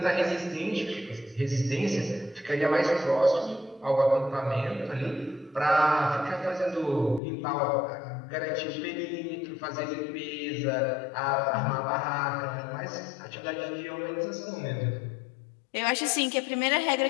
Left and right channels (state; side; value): drops out; right; at 7.2 s